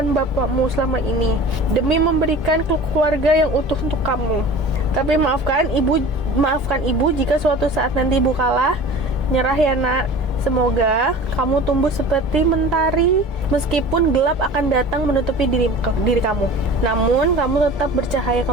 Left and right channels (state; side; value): normal; both; correlation 0.40